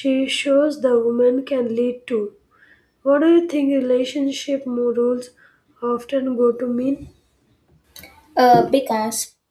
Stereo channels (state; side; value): identical; both; correlation 1.00